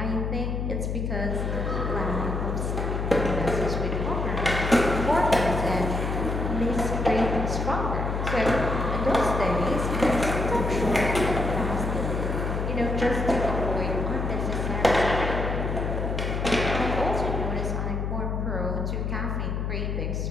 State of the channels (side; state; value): left; noise; hum, 1 dB below the sound